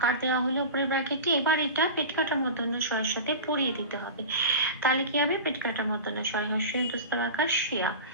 দেওয়া হলো উপরের ব্র্যাকেটে। এবার এটা পেট কাটা মূর্ধন্য ষয়ের সাথে পরিয়ে দিতে হবে, তাহলে কি হবে, পেট কাটা মূর্ধন্য ষয় হর্ষই অন্তস্থ আকার শিয়া।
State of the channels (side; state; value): both; inverted; correlation -0.31